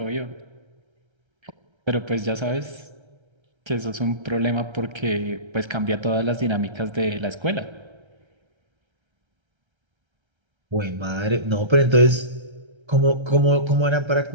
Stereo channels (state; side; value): late; left; 1.3 ms